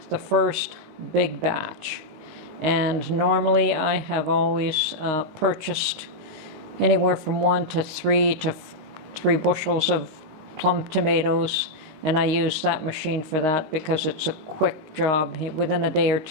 the first big batch. And normally I have always purchased anywhere from 1 to 3 to 3 bushels of plum tomatoes, and I use that machine for that because it's a quick job. Within a day or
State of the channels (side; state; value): left; late; 19 ms